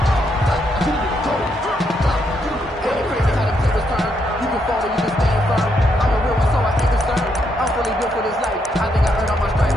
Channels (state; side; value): normal; both; correlation 0.77